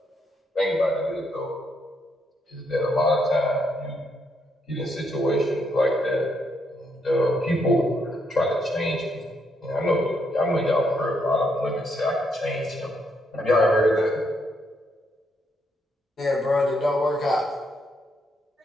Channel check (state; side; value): normal; both; correlation 0.76